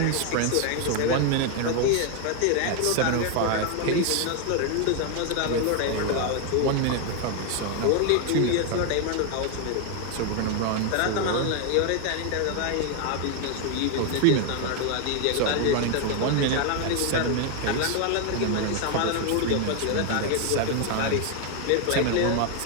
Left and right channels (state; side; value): different; both; correlation 0.00